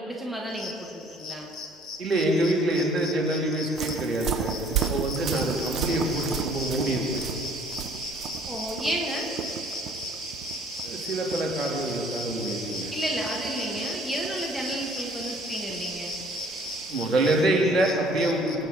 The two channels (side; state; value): both; normal; correlation 0.57